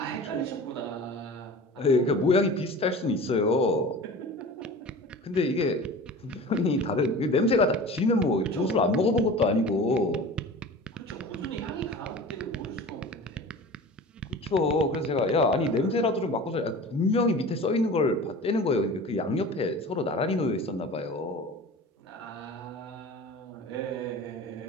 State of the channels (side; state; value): both; normal; correlation 0.37